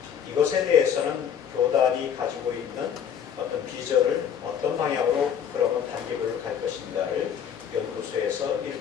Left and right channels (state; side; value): quieter; right; 8.3 dB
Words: 이것에 대해서는 교단이 가지고 있는 어떤 비전을 어떤 방향으로 그러면 단계별로 갈 것인가를 연구소에서